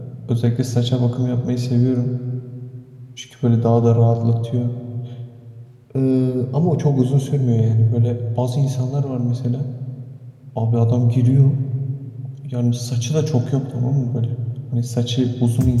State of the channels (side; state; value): both; identical; correlation 1.00